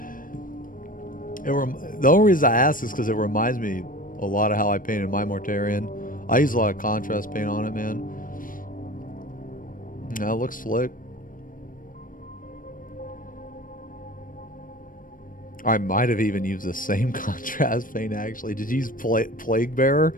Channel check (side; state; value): right; late; 0.40 ms